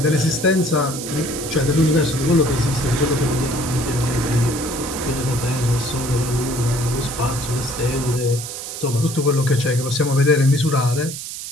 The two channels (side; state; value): right; noise; hiss, 8 dB below the sound